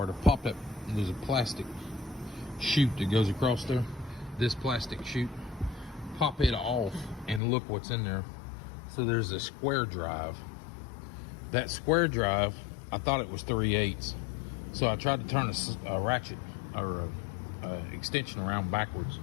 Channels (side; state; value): right; drops out; at 7.4 s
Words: to pop that. There's a plastic chute that goes across there. This plastic chute. Pop it off and look what's in there. So there's a square drive. That square drive, I thought it was 3/8. So I tried to turn a ratchet or a extension around backwards